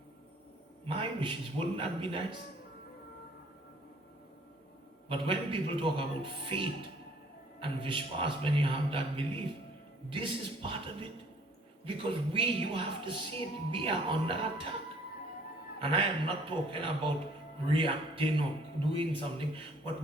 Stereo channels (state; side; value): normal; both; correlation 0.57